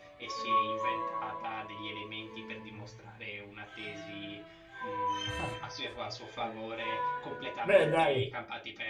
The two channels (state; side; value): identical; both; correlation 1.00